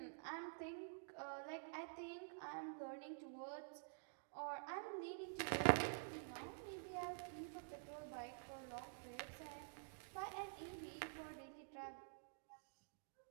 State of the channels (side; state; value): left; silent; digital silence